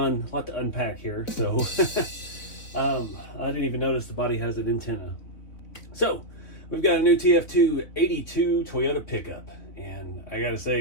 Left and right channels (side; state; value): right; late; 4.0 ms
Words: a lot to unpack here. So I didn't even notice the body has an antenna. So we've got a new TF2 82 Toyota pickup, and I gotta